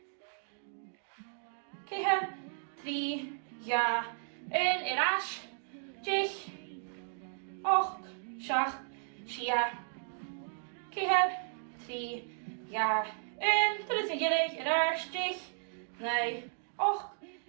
keher, 3, ja, 1, raas. Jich, och, shach, shia, keher, 3, ja, 1, dat is een gelijk, raars, jich, nee, och,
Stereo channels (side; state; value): left; silent; digital silence